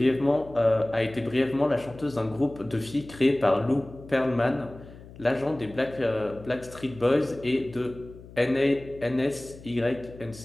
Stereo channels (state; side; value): noise; left; hum, 18 dB below the sound